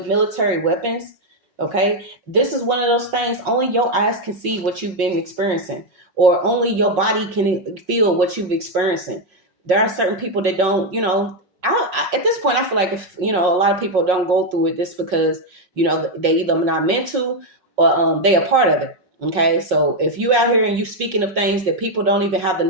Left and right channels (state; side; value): late; left; 5.5 ms